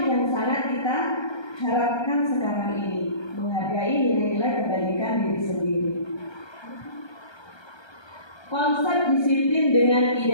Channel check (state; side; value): late; right; 1.3 ms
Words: yang sangat kita harapkan sekarang ini, menghargai nilai-nilai kebajikan diri sendiri. Konsep disiplin dengan